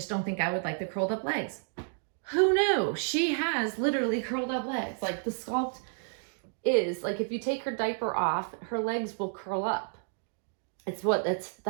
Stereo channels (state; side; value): silent; left; 57 dB below the other